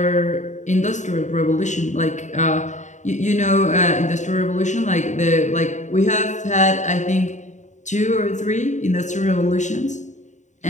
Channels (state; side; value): late; right; 0.35 ms